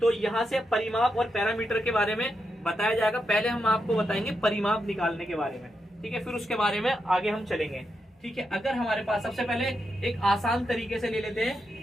तो यहाँ से परिमाप और पैरामीटर के बारे में बताया जाएगा। पहले हम आपको बताएंगे परिमाप निकालने के बारे में, ठीक है, फिर उसके बारे में आगे हम चलेंगे, ठीक है। अगर हमारे पास, सबसे पहले एक आसान तरीके से ले लेते हैं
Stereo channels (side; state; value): both; normal; correlation 0.84